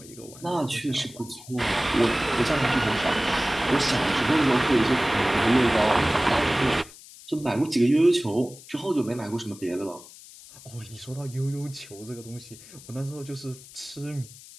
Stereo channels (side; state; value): left; noise; hiss, 19 dB below the sound